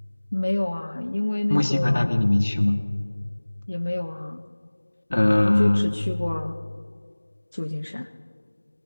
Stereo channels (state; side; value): inverted; both; correlation -1.00